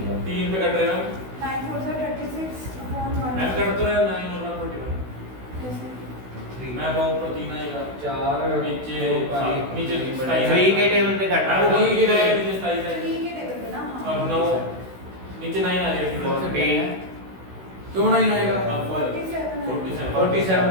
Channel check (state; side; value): late; left; 16 ms